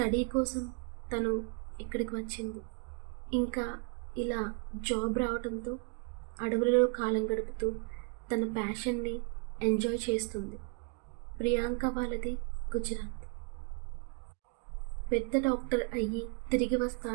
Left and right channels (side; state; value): left; quieter; 35.3 dB